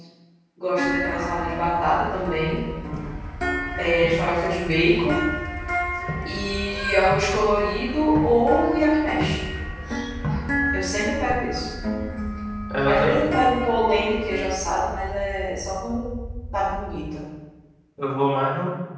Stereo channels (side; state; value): both; identical; correlation 1.00